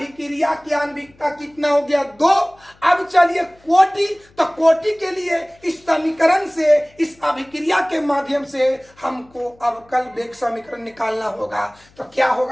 की आणविकता कितना हो गया? 2। अब चलिए कोटि, तो कोटि के लिए इस समीकरण से, इस अभिक्रिया के माध्यम से हमको अवकल वेग समीकरण निकालना होगा। तो क्या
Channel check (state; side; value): noise; left; hum, 30 dB below the sound